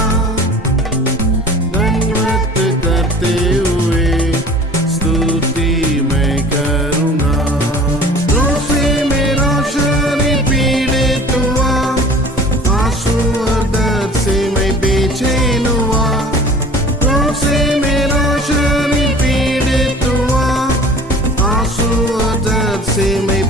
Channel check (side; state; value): both; normal; correlation 0.44